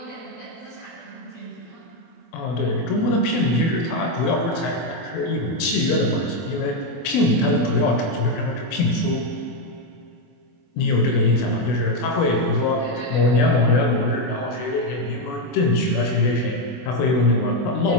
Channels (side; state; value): right; late; 24 ms